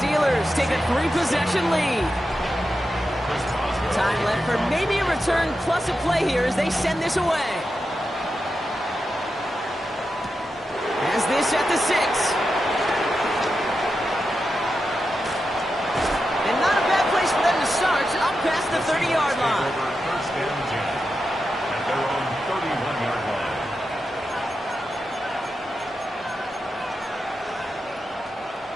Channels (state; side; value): normal; both; correlation 0.89